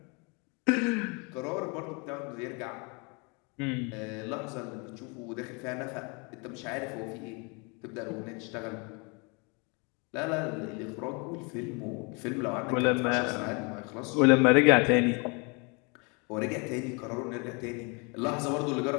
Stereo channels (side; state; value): right; quieter; 31.8 dB